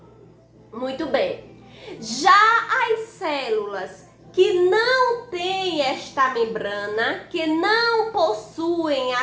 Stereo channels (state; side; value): identical; both; correlation 1.00